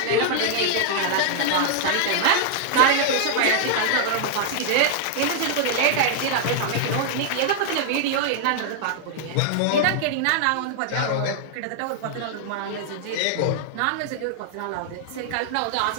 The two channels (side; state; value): both; different; correlation -0.01